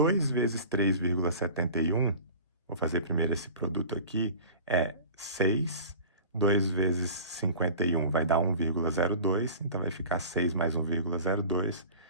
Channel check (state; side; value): inverted; both; correlation -0.39